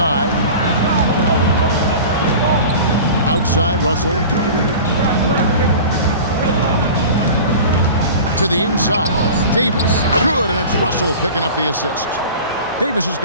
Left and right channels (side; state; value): both; inverted; correlation -0.37